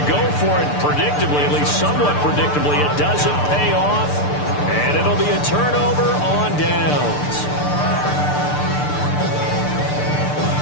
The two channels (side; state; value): right; late; 6.8 ms